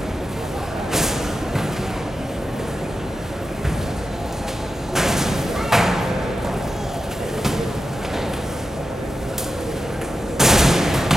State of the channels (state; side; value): normal; both; correlation 0.90